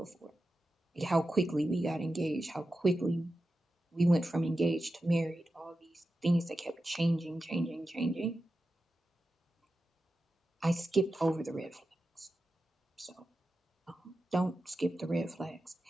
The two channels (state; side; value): normal; both; correlation 0.92